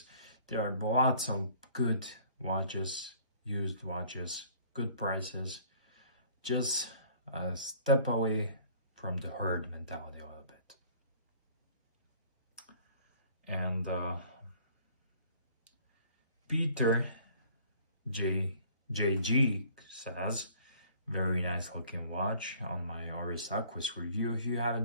There are lots of good watches, used watches, good prices, just a step away from the herd mentality a little bit. And Peter JG says, very nice looking watch on my Oris Aquis review. If you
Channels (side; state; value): both; inverted; correlation -0.54